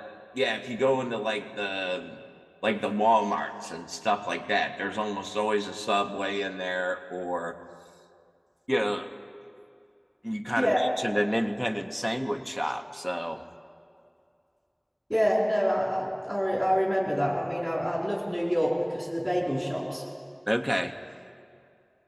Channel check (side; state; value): both; identical; correlation 1.00